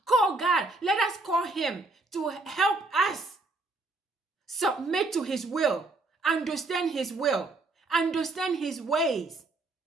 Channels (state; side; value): quieter; left; 3.2 dB